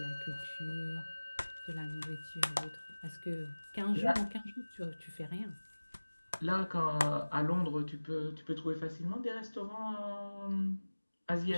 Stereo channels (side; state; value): both; inverted; correlation -1.00